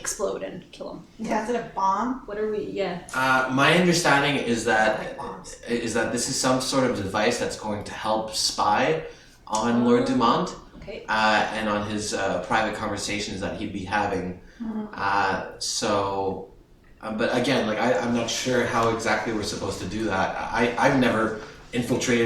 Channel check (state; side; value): identical; both; correlation 1.00